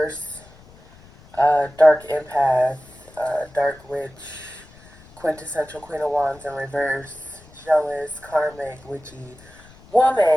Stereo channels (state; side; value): noise; left; rumble, 24 dB below the sound